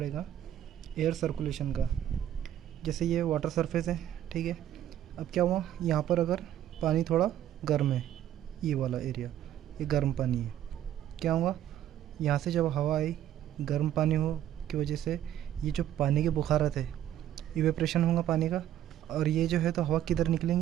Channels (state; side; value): quieter; left; 11.6 dB